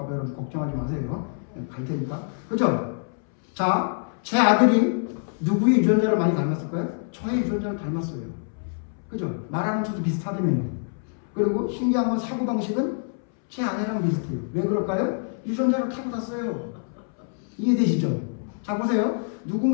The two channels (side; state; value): right; silent; 61 dB below the other